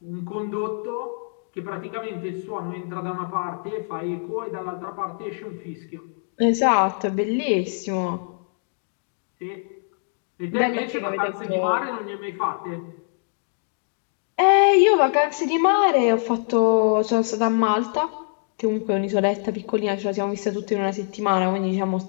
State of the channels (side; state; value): right; silent; 63 dB below the other